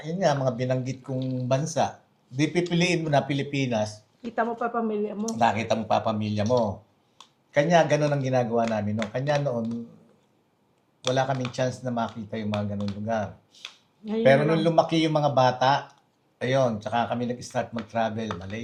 binanggit kong bansa? Di pipiliin mo na Pilipinas. Kita mo pa pamilya mo. Nakita mo pa pamilya mo. Kanya ganun ang ginagawa namin. No? Kanya noon, wala kaming chance na makita yung mga ganun lugar. Ngayon Pero nung lumaki yung mga bata, ayun, tsaka kami nag-start mag-travel.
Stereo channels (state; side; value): identical; both; correlation 1.00